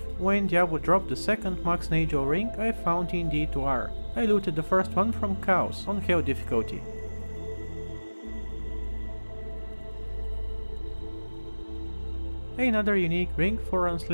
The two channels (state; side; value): inverted; both; correlation -1.00